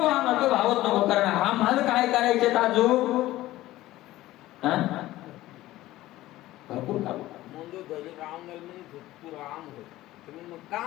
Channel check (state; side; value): quieter; right; 16.2 dB